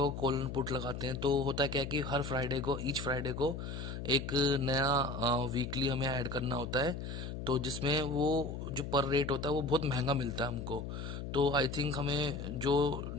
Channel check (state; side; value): noise; left; hum, 6 dB below the sound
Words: कॉल एंड पुट लगाते हैं तो होता है क्या है कि हर फ्राइडे को, ईच फ्राइडे को एक नया वीकली हमें ऐड करना होता है। तो जिसमें वो जो पर रेट होता है वो बहुत महंगा मिलता है हमको। तो आई थिंक हमें जो